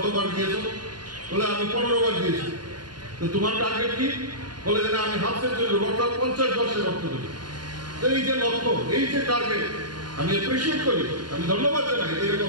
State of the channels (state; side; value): late; left; 0.70 ms